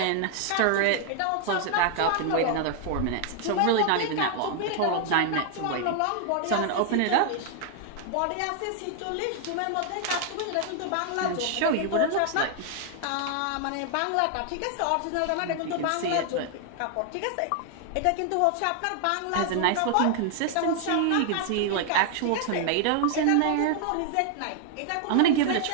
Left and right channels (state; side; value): different; both; correlation 0.00